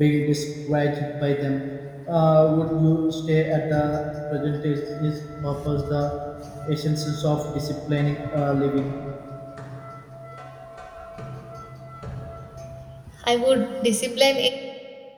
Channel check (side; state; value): both; identical; correlation 1.00